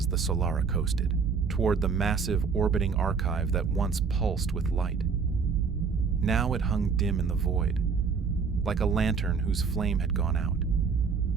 the Solara coasted toward the massive orbiting archive that once pulsed with light. Now it hung dim in the void, like a lantern whose flame had gone out.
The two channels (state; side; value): quieter; left; 5.5 dB